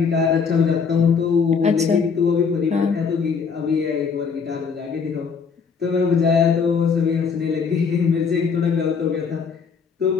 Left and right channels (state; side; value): quieter; right; 5.8 dB